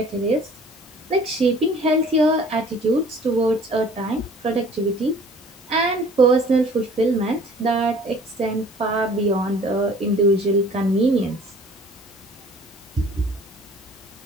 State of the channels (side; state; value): both; normal; correlation 0.50